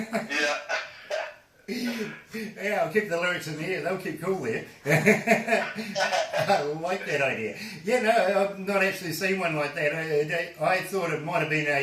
Yeah, I'll keep the lyrics in the air. They'll keep cool there. I like that idea. Yeah, no, I've not actually seen one like that. I thought it might have been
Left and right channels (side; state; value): both; identical; correlation 1.00